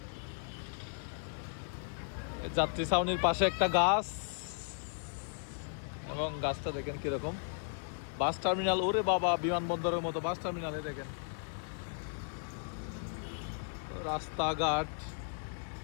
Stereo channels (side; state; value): right; silent; digital silence